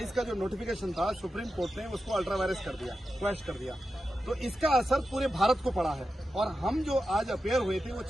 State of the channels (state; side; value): normal; both; correlation 0.91